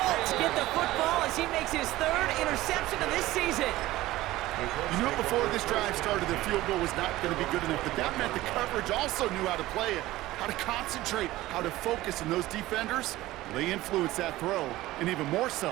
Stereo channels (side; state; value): left; quieter; 17.0 dB